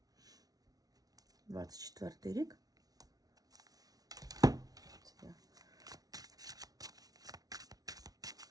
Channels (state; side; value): late; left; 0.18 ms